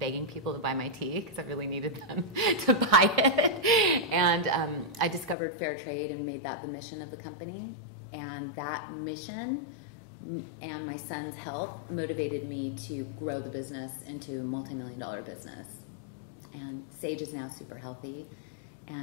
people to buy my tea because I really needed them to buy it. And I discovered fair trade and made that the mission of the company. And that mission and my son's health motivated me to grow the business into a multi-million-dollar business. And Sage is now super healthy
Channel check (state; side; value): drops out; right; at 5.4 s